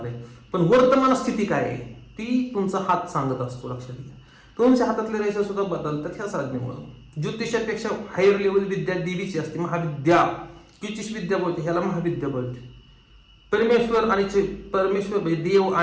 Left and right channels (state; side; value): identical; both; correlation 1.00